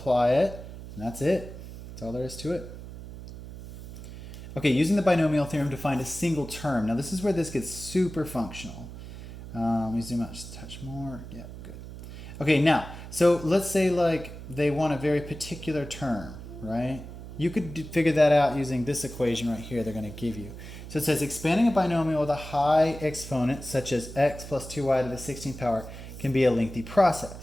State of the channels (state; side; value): noise; right; hum, 12 dB below the sound